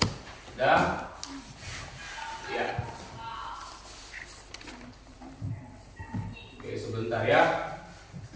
Dah. Ya. Oke, sebentar ya.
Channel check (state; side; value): identical; both; correlation 1.00